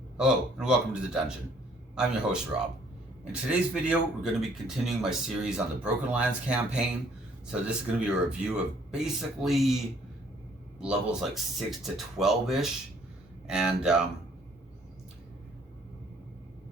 Hello and welcome to the dungeon. I'm your host Rob. In today's video we're going to be continuing my series on the Broken Lands campaign. So this is going to be a review of basically levels like 6 to 12-ish. And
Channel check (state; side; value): normal; both; correlation 0.62